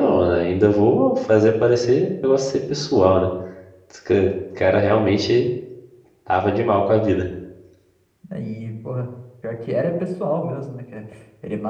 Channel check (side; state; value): both; identical; correlation 1.00